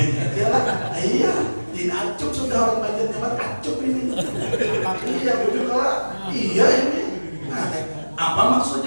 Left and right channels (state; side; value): inverted; both; correlation -1.00